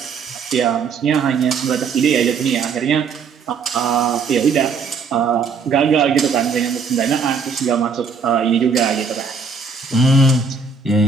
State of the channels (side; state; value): left; quieter; 5.2 dB